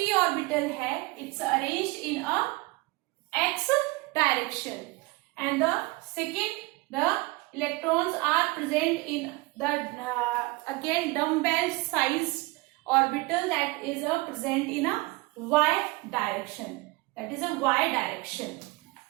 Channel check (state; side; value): quieter; left; 23.7 dB